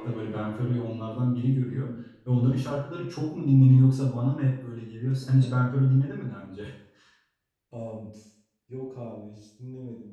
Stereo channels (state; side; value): identical; both; correlation 1.00